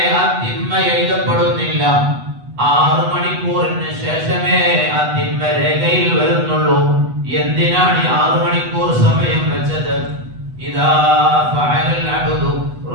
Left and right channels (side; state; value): left; late; 8.1 ms